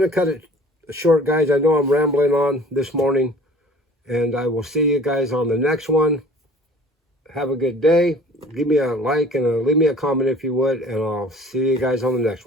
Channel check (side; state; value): both; normal; correlation 0.48